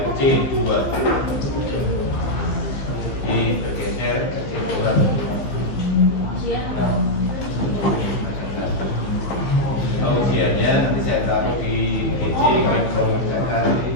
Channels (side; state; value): right; late; 15 ms